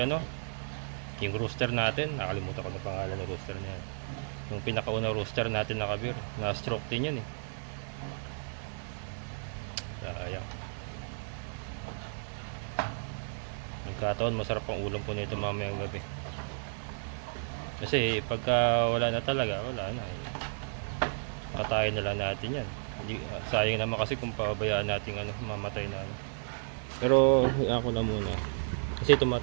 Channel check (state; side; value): silent; left; 56 dB below the other